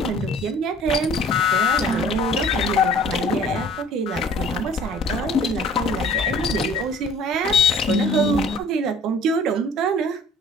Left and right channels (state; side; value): normal; both; correlation 0.51